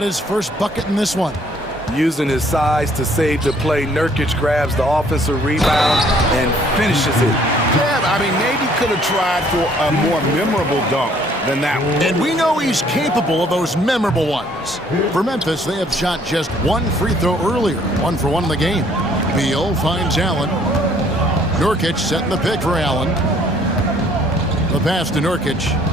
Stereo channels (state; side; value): normal; both; correlation 0.61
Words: his first bucket in this one. Using his size to save the play, Nurkic grabs the offensive rebound and finishes it. Yeah, I mean, maybe could have tried for a more memorable dunk than that one. And we know he's capable of those memorable ones. For Memphis, they have shot just one free throw earlier, 1 for 1 in the game. Beal finds Allen. Nurkic setting the pick for Allen. The pass to Nurkic.